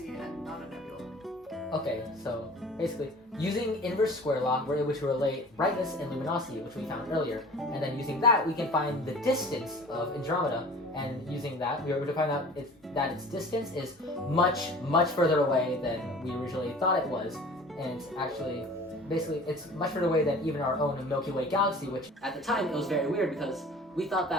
and not a nebula? Okay, so basically, using inverse square law, we're able to relate brightness and luminosity, which we found earlier. And then using that, we can find the distance of Andromeda. And using that, we were able to find out that its distance is much, much further away than we originally thought it was. And it's actually, basically, it's much further away than even our own Milky Way galaxy, which at the time, it was very weird because we thought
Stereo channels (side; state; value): both; normal; correlation 0.44